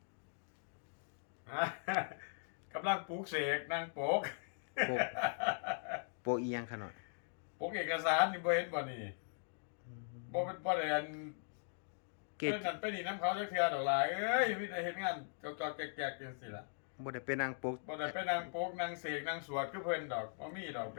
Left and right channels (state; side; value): silent; right; digital silence